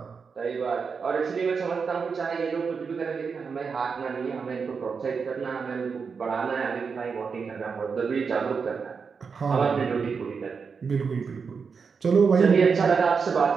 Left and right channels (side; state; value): left; quieter; 5.6 dB